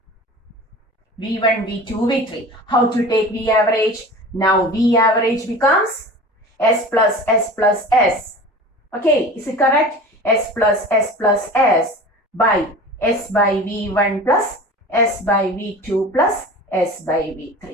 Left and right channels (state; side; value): normal; both; correlation 0.37